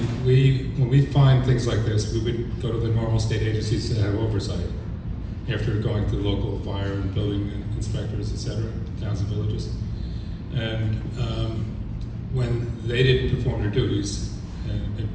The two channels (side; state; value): both; identical; correlation 1.00